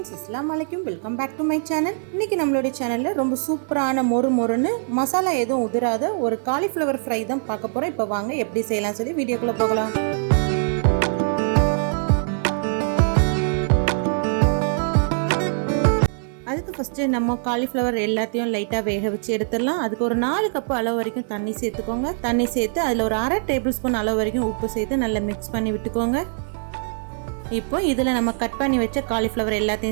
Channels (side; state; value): left; silent; 56 dB below the other